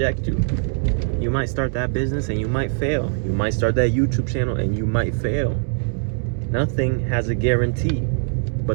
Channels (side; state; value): left; silent; 62 dB below the other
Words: you. You might start that business and you might fail. You might start that YouTube channel and you might fail. Nothing has a guarantee.